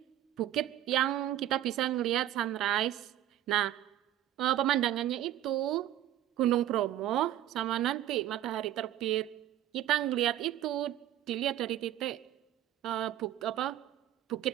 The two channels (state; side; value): quieter; left; 12.5 dB